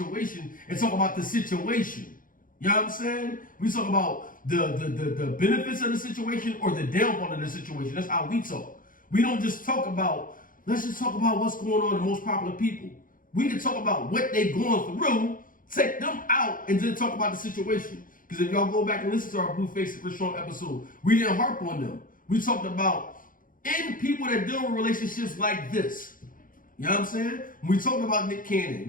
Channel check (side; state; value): right; late; 0.40 ms